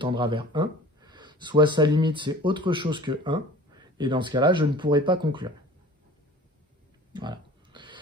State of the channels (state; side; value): normal; both; correlation 0.43